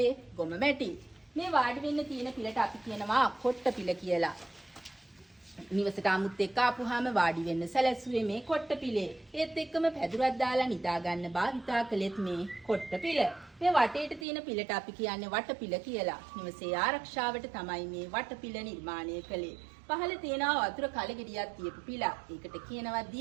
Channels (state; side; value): drops out; left; at 14.2 s